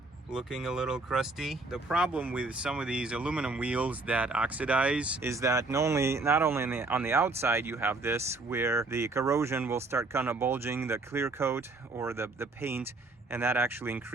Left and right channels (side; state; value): left; quieter; 3.3 dB